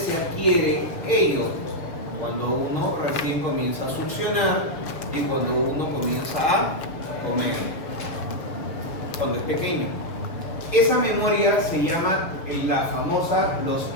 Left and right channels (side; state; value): right; late; 6.9 ms